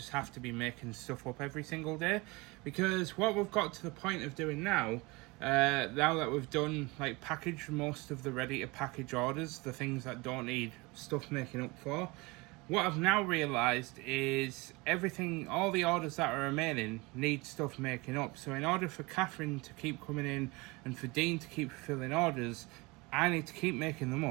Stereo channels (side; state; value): left; quieter; 24.8 dB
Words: have to be making stuff up every single day, because what we've got to the point of doing now that we've done, like, packaged most of the ready to package orders, the things that don't need stuff making up for, what I've now realised is everything, all the orders that are remaining need stuff making up. So in order for Catherine to keep coming in and for Dean to keep fulfilling orders, I need to keep making them